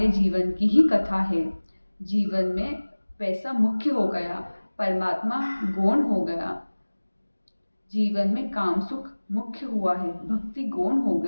जीवन की ही कथा है। जीवन में पैसा मुख्य हो गया, परमात्मा गौण हो गया। जीवन में काम सुख मुख्य हुआ है, भक्ति गौण हो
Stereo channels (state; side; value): inverted; both; correlation -1.00